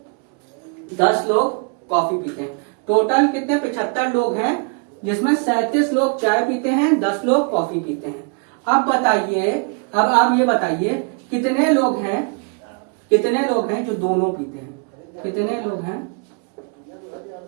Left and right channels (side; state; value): left; quieter; 36.6 dB